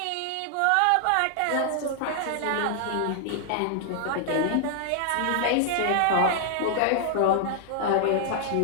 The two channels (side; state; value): both; different; correlation 0.00